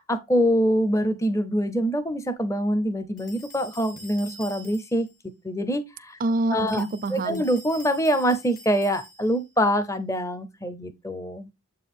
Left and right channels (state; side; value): normal; both; correlation 0.68